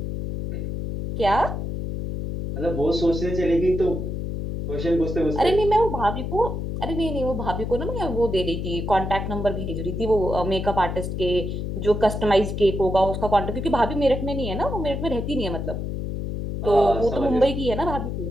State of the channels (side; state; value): left; noise; hum, 4 dB below the sound